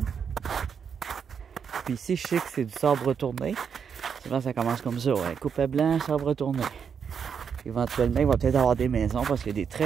Puis ici, je sais que c'est du sabre retourné. Souvent, ça commence comme ça, ouais. Coupe à blanc, sabre retourné. Éventuellement, il va peut-être avoir des maisons parce qu'il y a des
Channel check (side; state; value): left; quieter; 6.9 dB